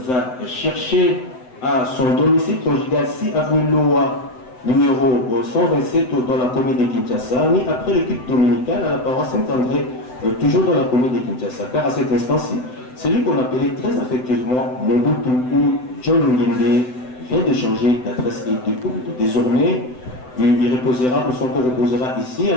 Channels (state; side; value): late; right; 7.9 ms